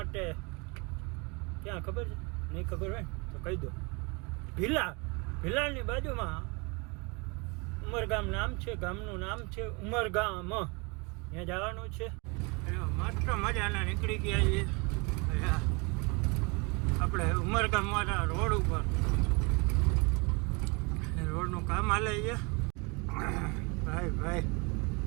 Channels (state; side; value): quieter; left; 29.7 dB